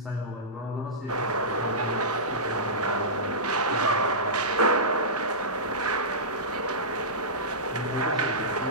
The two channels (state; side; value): normal; both; correlation -0.17